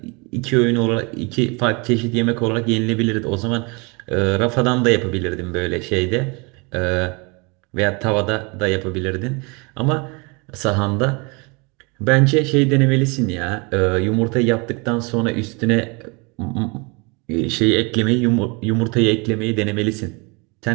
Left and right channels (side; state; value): left; quieter; 29.7 dB